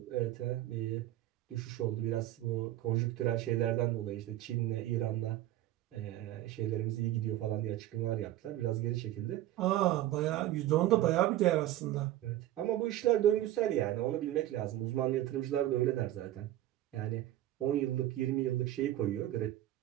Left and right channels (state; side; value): quieter; left; 14.0 dB